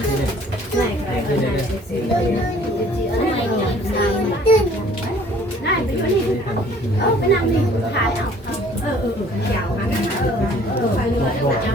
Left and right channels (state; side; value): normal; both; correlation 0.55